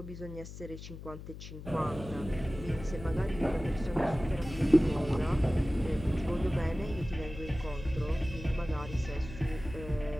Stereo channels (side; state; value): left; noise; hum, 12 dB below the sound